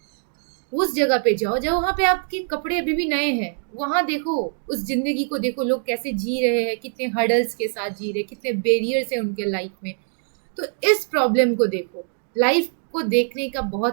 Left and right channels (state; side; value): silent; left; 63 dB below the other